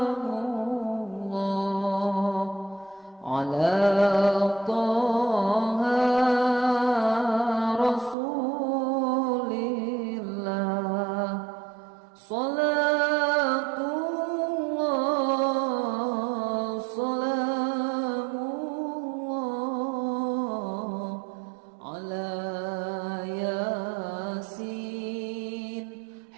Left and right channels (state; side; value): drops out; left; at 8.2 s